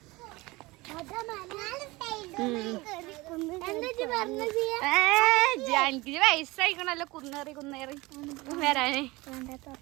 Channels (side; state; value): left; quieter; 22.0 dB